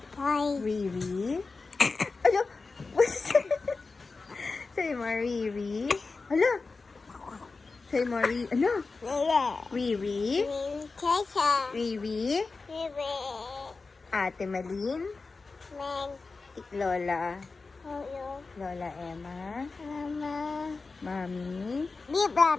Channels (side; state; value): right; quieter; 4.0 dB